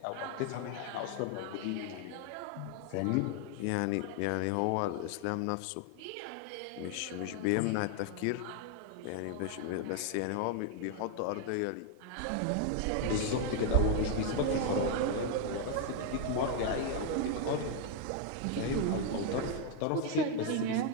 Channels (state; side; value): different; both; correlation 0.01